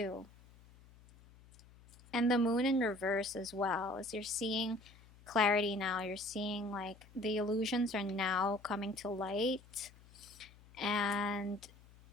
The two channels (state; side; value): noise; left; hum, 24 dB below the sound